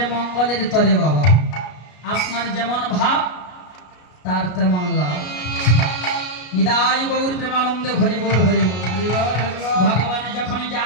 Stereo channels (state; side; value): late; right; 33 ms